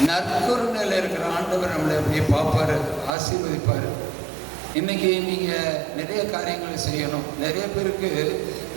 நற்கருணையில் இருக்கிற ஆண்டவர் நம்மளை அப்படியே பார்ப்பாரு, ஆசீர்வதிப்பார். இன்னைக்கு நீங்கள் நிறைய காரியங்களை செய்யணும். நிறைய பேருக்கு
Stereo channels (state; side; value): drops out; left; at 3.1 s